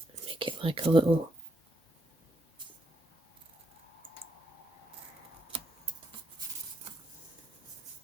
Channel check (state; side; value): normal; both; correlation 0.77